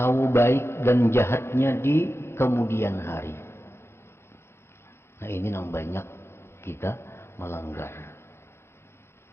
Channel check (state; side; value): late; right; 0.12 ms